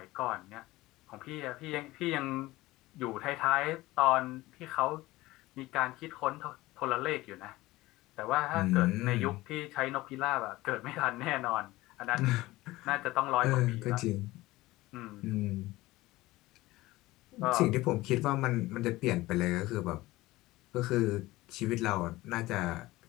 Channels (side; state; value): right; quieter; 18.6 dB